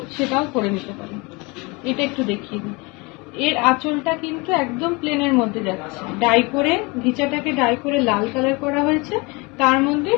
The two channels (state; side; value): quieter; right; 26.9 dB